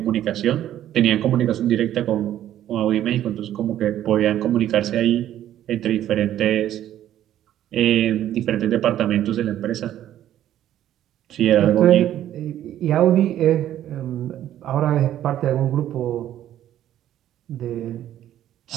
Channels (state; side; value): quieter; left; 11.9 dB